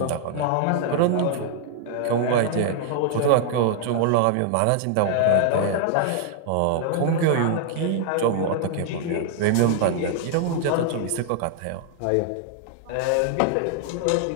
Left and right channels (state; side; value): different; both; correlation 0.00